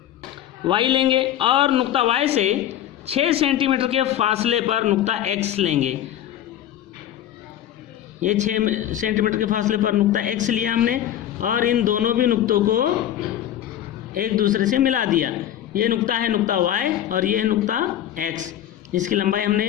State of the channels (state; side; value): quieter; right; 11.5 dB